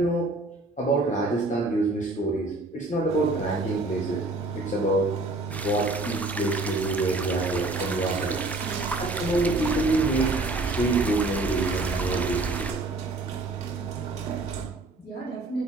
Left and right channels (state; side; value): quieter; left; 3.0 dB